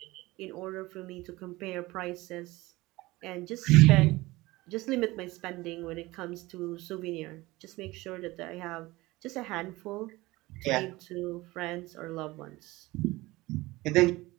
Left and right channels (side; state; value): left; quieter; 20.1 dB